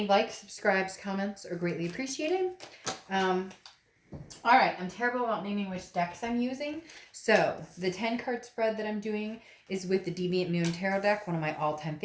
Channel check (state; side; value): identical; both; correlation 1.00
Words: likes, subscribes, comments are greatly appreciated. All right, I'm terrible about naming which decks I'm using. So the 10 card spread that I'm doing is with the Deviant Moon Tarot deck, one of my all-time